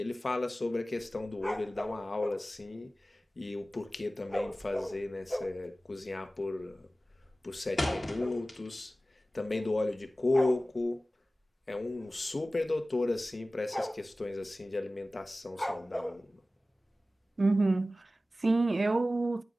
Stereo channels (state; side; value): normal; both; correlation 0.96